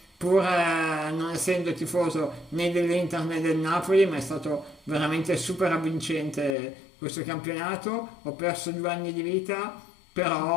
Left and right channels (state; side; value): drops out; right; at 6.6 s